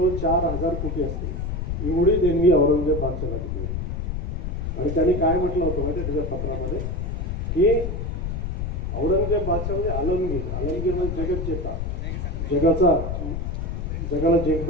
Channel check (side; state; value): left; noise; rumble, 3 dB below the sound